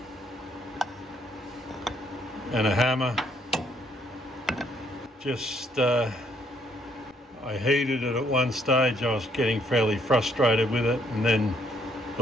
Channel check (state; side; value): normal; both; correlation 0.69